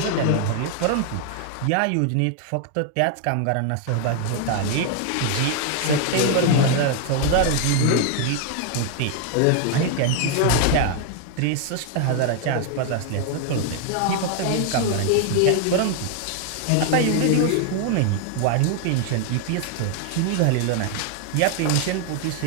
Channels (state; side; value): different; both; correlation 0.00